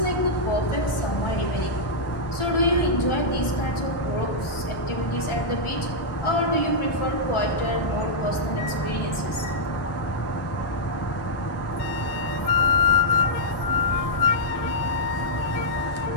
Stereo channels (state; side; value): late; right; 1.4 ms